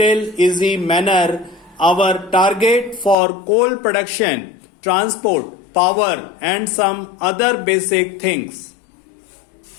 easy manner our target for coal production, transport, power and some other basic things.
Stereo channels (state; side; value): drops out; right; at 3.2 s